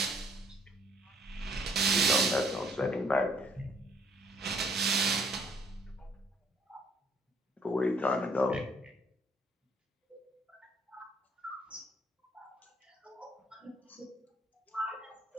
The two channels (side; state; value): both; normal; correlation 0.64